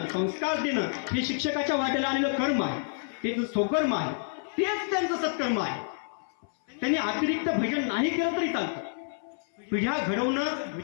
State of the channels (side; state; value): right; silent; 58 dB below the other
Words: संस्कार देणं, हे शिक्षकाच्या वाट्याला आलेलं कर्म आहे, ते स्वकर्म आहे, तेच त्यांचं सत्कर्म आहे. त्यांनी अतिरिक्त भजन नाही केलं तरी चालतं. पिढ्या घडवणं,